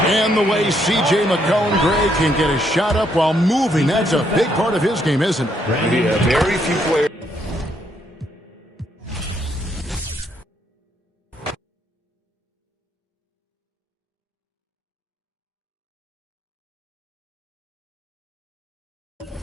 And the way C.J. McCollum, Greg, can get a shot up while moving, that's a big part of his game, isn't it? Yeah, very few players.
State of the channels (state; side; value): normal; both; correlation 0.73